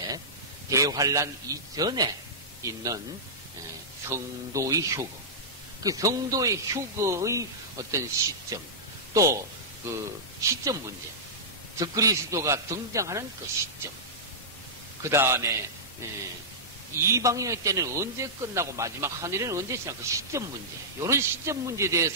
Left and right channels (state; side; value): normal; both; correlation -0.16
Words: 대환란 이전에 있는 성도의 휴거, 그 성도의 휴거의 어떤 시점, 또 그 시점 문제, 적그리스도가 등장하는 그 시점, 그 다음에 이방인의 때는 언제 끝나고 마지막 하늘에는 언제 시작, 그 시점 문제, 이런 시점 문제에